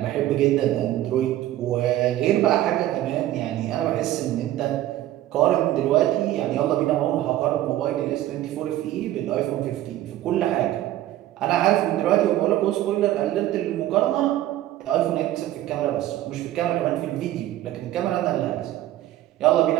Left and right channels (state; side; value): quieter; left; 14.0 dB